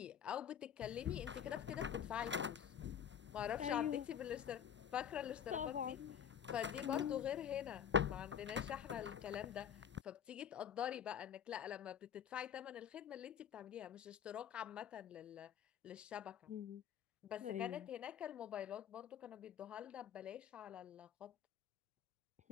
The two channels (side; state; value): right; quieter; 9.0 dB